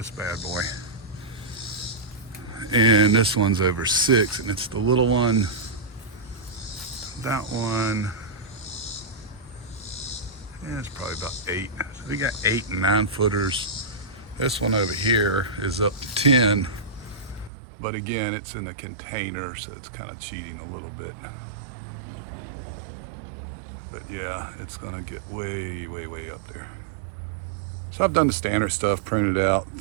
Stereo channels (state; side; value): drops out; left; at 17.5 s